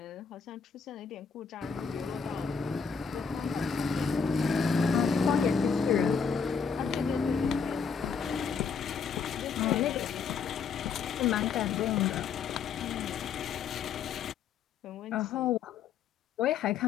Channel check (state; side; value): quieter; right; 6.1 dB